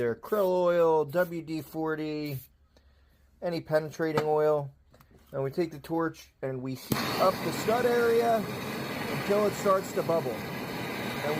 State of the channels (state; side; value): identical; both; correlation 1.00